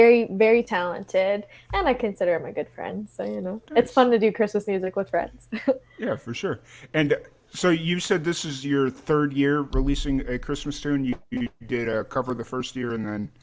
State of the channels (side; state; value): both; identical; correlation 1.00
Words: very talented, and I consider him a good friend. So, it's Nice. fun to do Christmas music with friends. Yeah, for sure. And so you said this is your third year releasing a Christmas tune. You did a cover the first year, and then